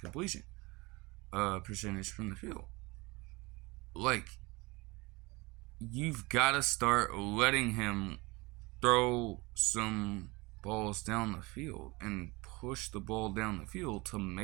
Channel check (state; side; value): quieter; left; 24.3 dB